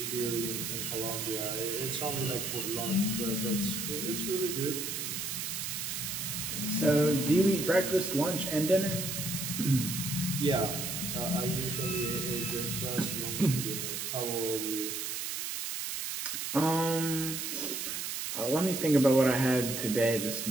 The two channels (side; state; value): right; noise; hiss, 3 dB below the sound